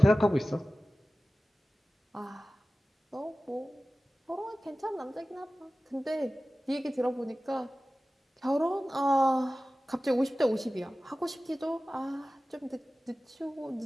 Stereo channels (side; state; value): both; normal; correlation 0.96